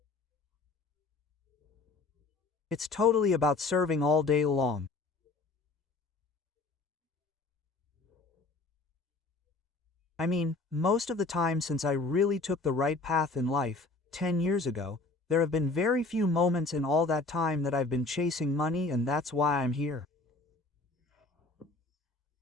It's totally about serving all day long. I mean, most of the time since I really took the right path in life, 10 years ago, there have been very few moments in all that time that I've been chasing money, and that's why I'm here.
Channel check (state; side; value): quieter; right; 3.5 dB